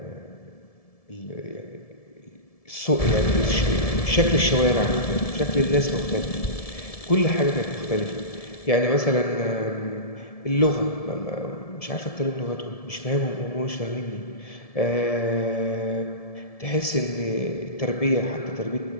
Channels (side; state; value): right; late; 1.7 ms